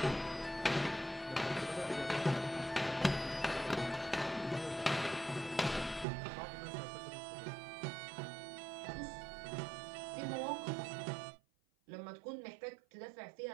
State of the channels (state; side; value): drops out; left; at 6.1 s